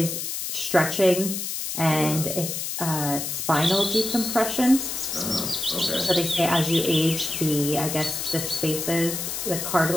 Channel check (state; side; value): noise; left; hiss, 4 dB below the sound